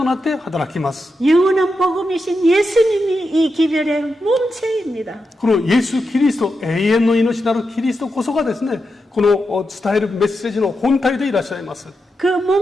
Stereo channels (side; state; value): both; normal; correlation 0.87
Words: なって働きます。 영원한 복음이신 예수님이 이 기별의 몸체입니다. このイエス・キリスト、永遠の命なるキリストこそがですね、この伝えるメッセージの本体でいらっしゃいます。 그